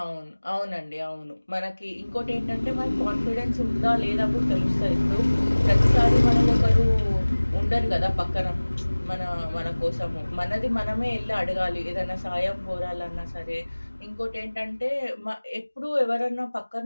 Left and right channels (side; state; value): both; inverted; correlation -1.00